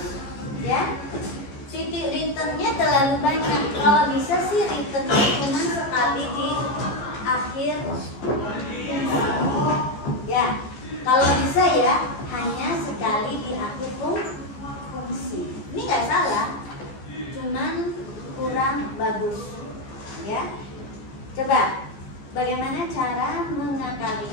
ya. Titik returnnya terlalu banyak. Kalau bisa sih returnnya cuma sekali di akhir. Ya, kalau bisa ya hanya sekali di akhir fungsi. Ini nggak salah, cuman kurang bagus. Ya, coba bagaimana cara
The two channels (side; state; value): right; late; 14 ms